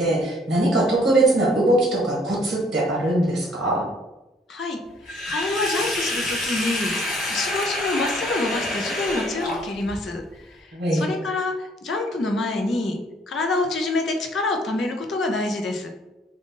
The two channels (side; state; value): both; normal; correlation 0.62